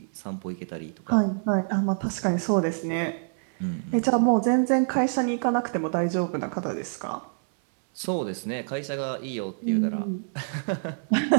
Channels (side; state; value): left; silent; 61 dB below the other